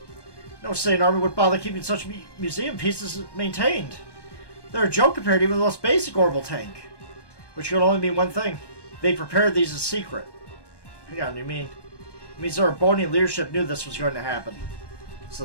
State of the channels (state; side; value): late; right; 1.2 ms